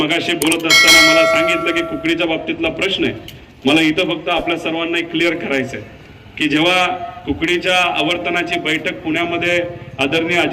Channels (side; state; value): both; identical; correlation 1.00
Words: बोलत असताना मला सांगितलं की कुकडीच्या बाबतीतला प्रश्न आहे. मला इथं फक्त आपल्या सर्वांना क्लिअर करायचं आहे की जेव्हा कुकडीच्या आवर्तनाची बैठक पुण्यामध्ये आदरणीय